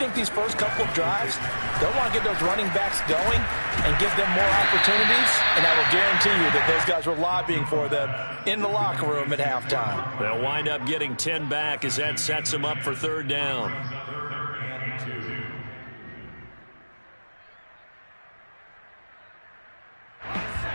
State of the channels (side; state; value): both; inverted; correlation -1.00